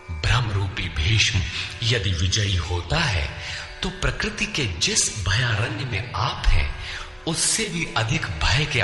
ब्रह्म रूपी भीष्म यदि विजयी होता है तो प्रकृति के जिस भयारण्य में आप हैं, उससे भी अधिक भय के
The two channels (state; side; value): identical; both; correlation 1.00